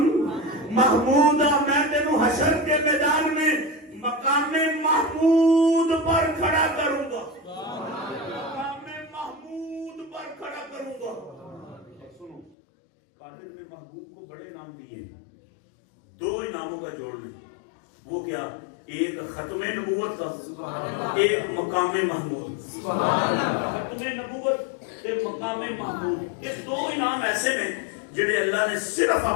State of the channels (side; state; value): right; drops out; at 12.6 s